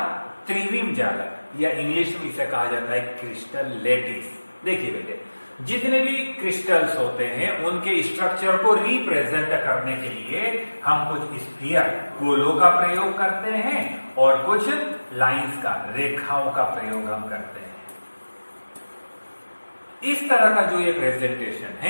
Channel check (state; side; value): inverted; both; correlation -1.00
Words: त्रिविम जालक या इंग्लिश में इसे कहा जाता है क्रिस्टल लेटिस। देखिए बेटे जितने भी क्रिस्टल्स होते हैं उनके स्ट्रक्चर को रिप्रेजेंट करने के लिए हम कुछ स्फीयर गोलों का प्रयोग करते हैं और कुछ लाइंस का रेखाओं का प्रयोग हम करते हैं। इस तरह का जो ये प्रेजेंटेशन